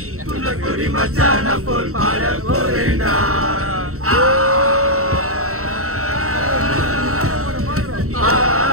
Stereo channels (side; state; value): left; late; 0.64 ms